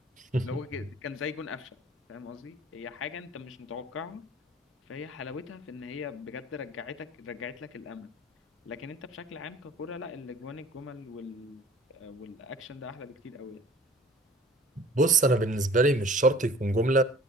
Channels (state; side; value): normal; both; correlation 0.48